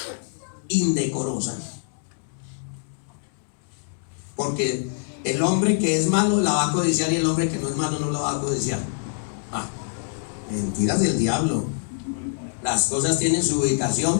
indecorosa. Porque el hombre que es malo la va a codiciar y el hombre que no es malo no la va a codiciar. Mentiras del diablo. Las cosas tienen su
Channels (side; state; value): right; silent; digital silence